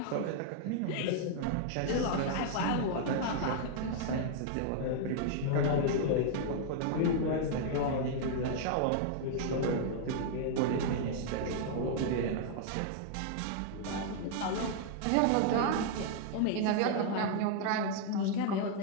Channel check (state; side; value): different; both; correlation -0.01